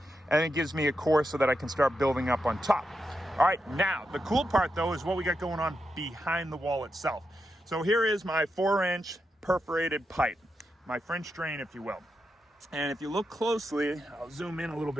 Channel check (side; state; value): both; normal; correlation 0.86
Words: and it gives me a course so that I can start building up on top. All right, now the cool part though is what we got going on behind the wall itself. So here is my 4-inch perforated pipe, my French drain, if you will. And if you look closely, I'll zoom in a little